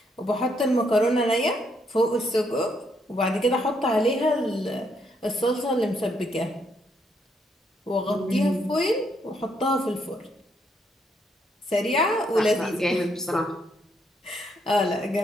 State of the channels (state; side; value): normal; both; correlation 0.74